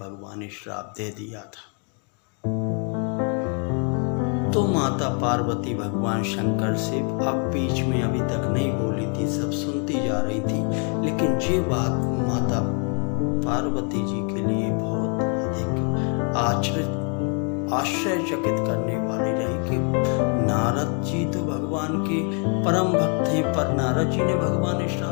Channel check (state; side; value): quieter; right; 39.9 dB